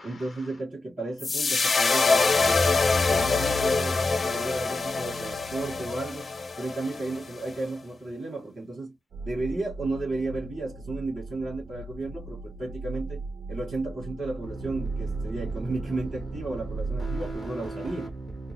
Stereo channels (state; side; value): normal; both; correlation 0.89